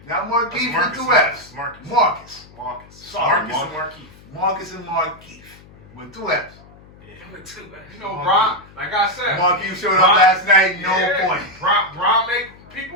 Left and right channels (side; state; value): left; noise; hum, 23 dB below the sound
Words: Not Marquise with two F's. Marcus. Sorry, Marcus and Marquise. Marcus and Marquise with 2 F's. You know, Bron, like I said. Marquise showed up last night, no point. Bron make